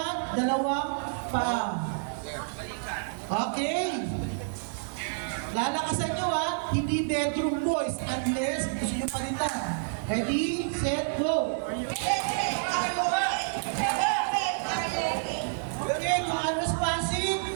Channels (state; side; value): silent; left; 59 dB below the other